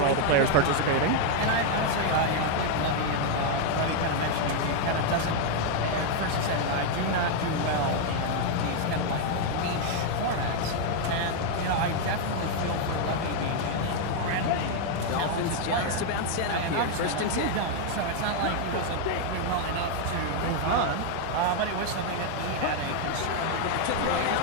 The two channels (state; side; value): different; both; correlation 0.00